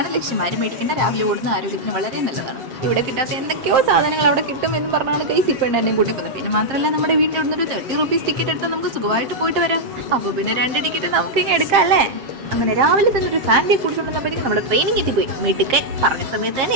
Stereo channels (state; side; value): late; left; 7.6 ms